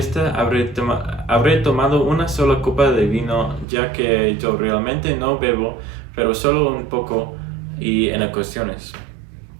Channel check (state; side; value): drops out; left; at 3.7 s